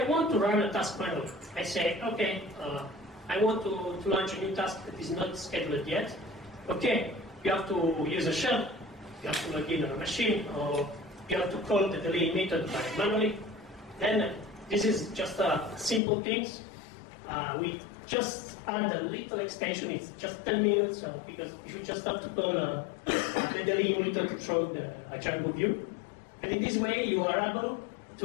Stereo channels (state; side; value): drops out; right; at 16.0 s